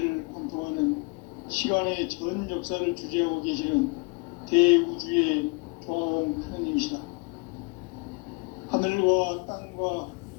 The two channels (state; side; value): quieter; right; 29.8 dB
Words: 관통하는 시간의 전 역사를 주재하고 계시는 대우주의 조화원 하느님이시다. 하늘과 땅과